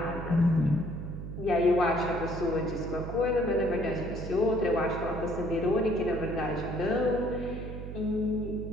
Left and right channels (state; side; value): noise; right; hum, 8 dB below the sound